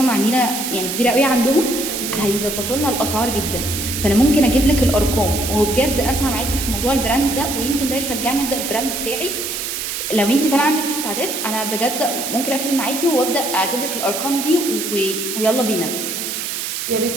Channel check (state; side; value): noise; right; hiss, 4 dB below the sound